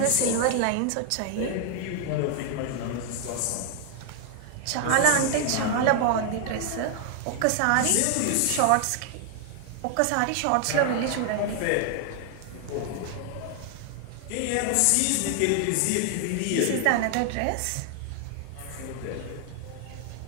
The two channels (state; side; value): different; both; correlation 0.00